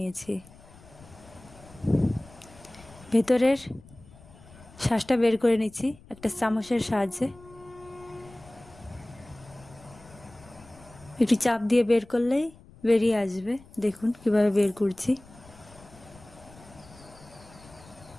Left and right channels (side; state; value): left; noise; rumble, 22 dB below the sound